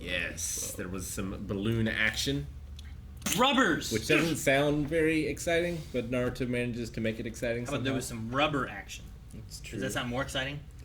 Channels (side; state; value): both; identical; correlation 1.00